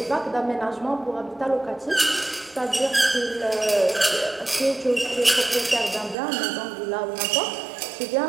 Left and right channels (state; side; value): drops out; left; at 6.2 s